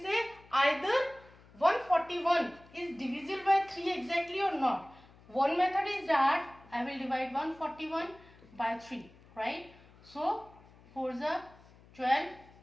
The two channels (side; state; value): left; noise; hum, 25 dB below the sound